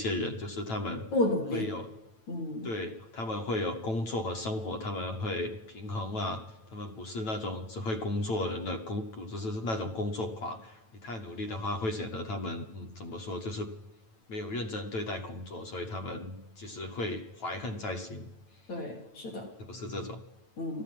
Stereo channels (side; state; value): right; late; 9.0 ms